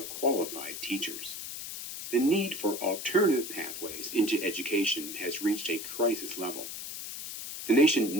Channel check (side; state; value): left; noise; hiss, 8 dB below the sound